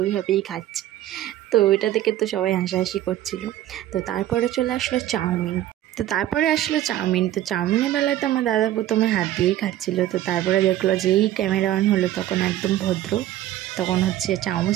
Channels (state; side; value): quieter; left; 13.3 dB